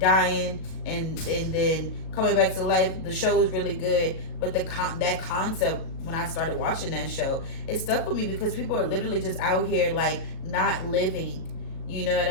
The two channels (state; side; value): late; right; 37 ms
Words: and then coming back to life. The show was really good, but that concept, when I started watching that show, it stuck with me, because people are literally just out here like not living. You know what